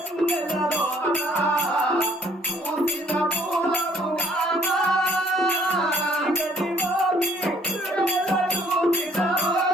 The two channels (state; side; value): normal; both; correlation 0.62